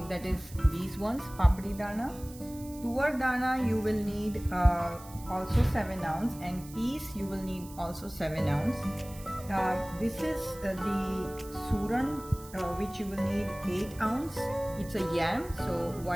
that is these ones, papdi dana. Tuvar dana you will need also 7 ounce, and peas you will need also 7 ounce. This is the suran, which you will need 8 ounce. It's a yam, so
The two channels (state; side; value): noise; right; hiss, 19 dB below the sound